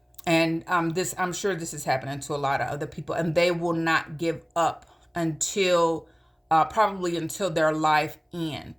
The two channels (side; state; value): both; identical; correlation 1.00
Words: And I'm sure this is happening to a lot of other people, and they will not give up until probably until their life